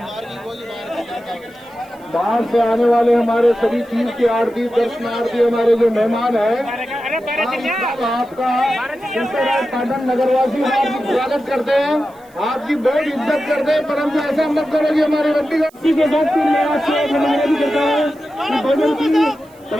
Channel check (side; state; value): right; noise; hiss, 30 dB below the sound